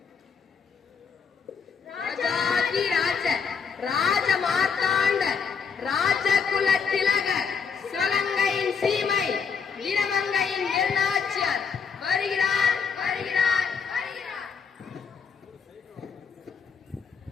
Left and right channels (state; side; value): quieter; right; 6.0 dB